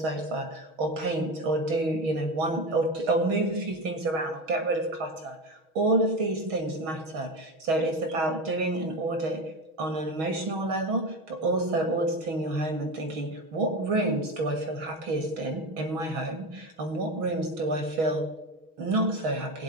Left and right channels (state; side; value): late; left; 6.3 ms